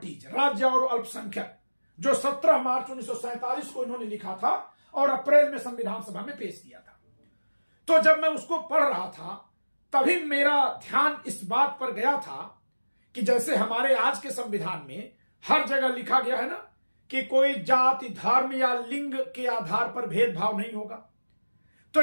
राज्य और अल्पसंख्यक, जो 17 मार्च 1947 को इन्होंने लिखा था और अप्रैल में संविधान सभा में पेश किया था, तो जब मैं उसको पढ़ रहा था तभी मेरा ध्यान इस बात पर गया था कि जैसे हमारे आज के संविधान में हर जगह लिखा गया है ना कि कोई जाति, धर्म या लिंग के आधार पर भेदभाव नहीं होगा, तो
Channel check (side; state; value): both; inverted; correlation -1.00